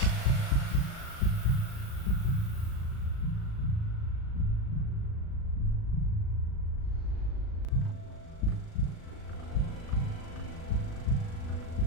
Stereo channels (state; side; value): late; right; 37 ms